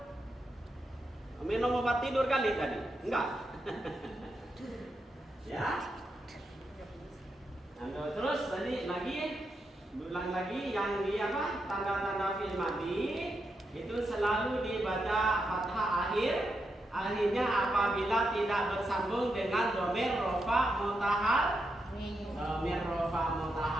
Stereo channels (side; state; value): both; normal; correlation 0.84